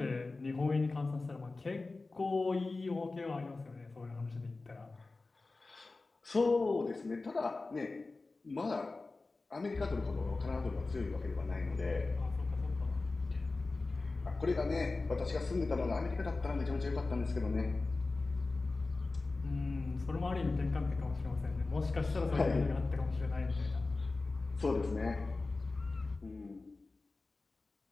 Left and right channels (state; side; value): quieter; right; 3.5 dB